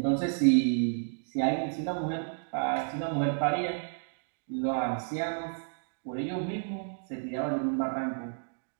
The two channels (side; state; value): left; silent; digital silence